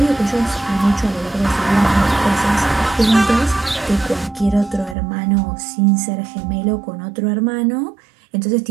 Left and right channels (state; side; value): drops out; left; at 5.0 s